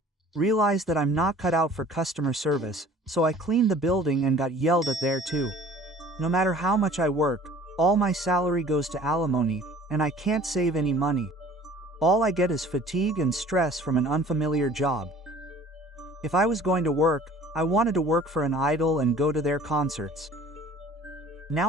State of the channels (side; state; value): both; normal; correlation 0.49